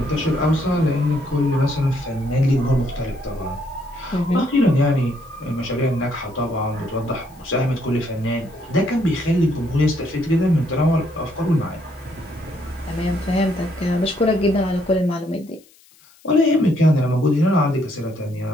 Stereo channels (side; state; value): left; noise; hiss, 28 dB below the sound